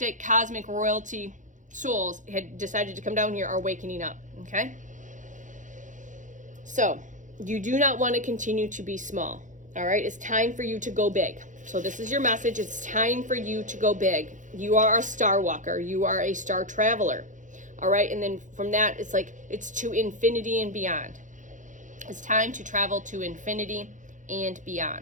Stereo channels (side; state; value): left; late; 0.37 ms